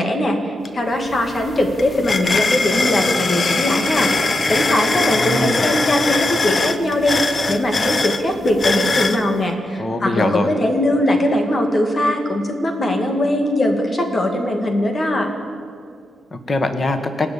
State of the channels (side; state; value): both; normal; correlation 0.86